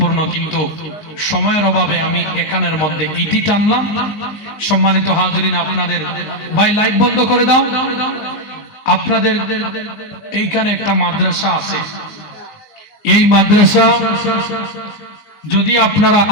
কিন্তু সময়ের অভাবে আমি এখানের মধ্যে ইতি টানলাম। সম্মানিত হাজরিন, আপনাদের ভাই লাইট বন্ধ করে দাও। আপনাদের এইখানে একটা মাদ্রাসা আছে, এই মাদ্রাসা যদি আপনারা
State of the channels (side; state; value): right; late; 19 ms